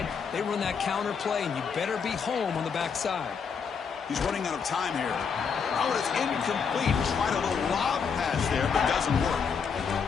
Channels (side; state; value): right; quieter; 6.2 dB